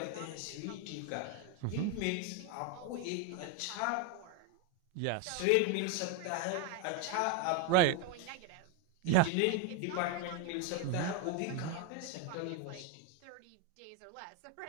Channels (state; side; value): different; both; correlation 0.01